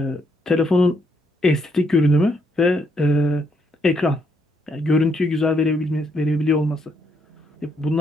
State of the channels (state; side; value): normal; both; correlation 0.75